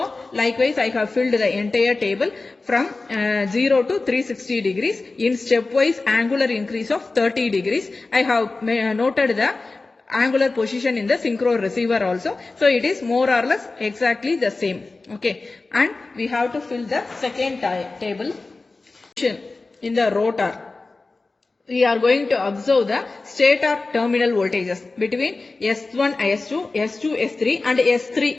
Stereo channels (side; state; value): right; quieter; 3.5 dB